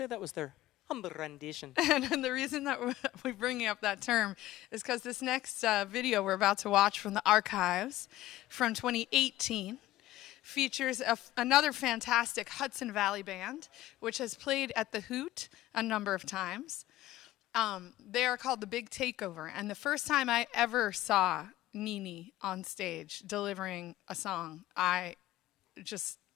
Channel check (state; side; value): quieter; right; 15.6 dB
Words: that was their humble rendition. And the reason that we're bringing up that term is because this next video we're about to watch from the archives from 2018 features another fantastic Hudson Valley band, which has played at the Hoot a number of times. They are called the Big Takeover. And the first time I ever saw Nini on stage delivering a song, my